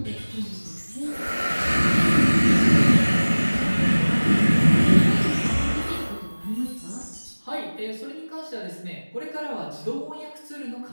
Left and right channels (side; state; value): both; inverted; correlation -1.00